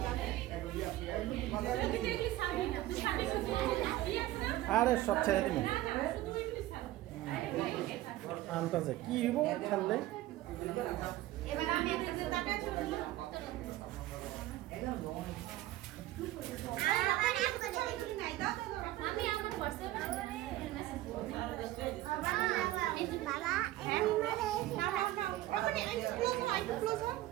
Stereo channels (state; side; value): quieter; left; 15.8 dB